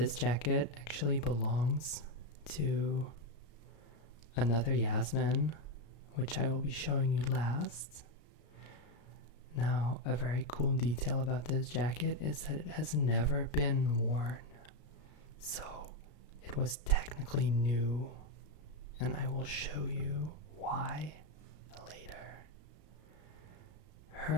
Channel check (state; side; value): late; right; 34 ms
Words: jacket actually belongs to another Yasmin, which I will be showing you last. Now, a very cool detail about this jacket is that it has never been worn. So, it was technically new, and I will show you why later.